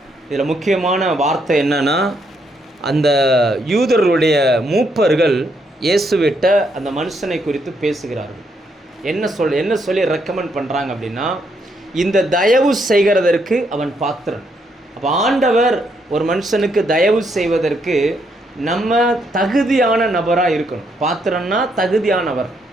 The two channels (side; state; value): both; normal; correlation 0.75